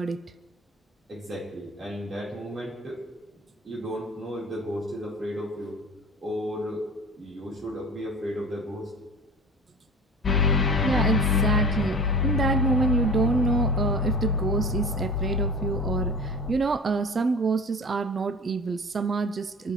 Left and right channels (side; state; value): both; normal; correlation 0.38